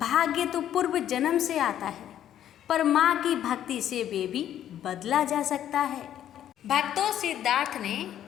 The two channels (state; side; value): quieter; right; 11.0 dB